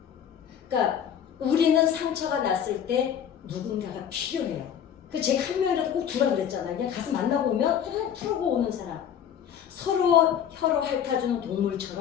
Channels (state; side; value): quieter; right; 8.9 dB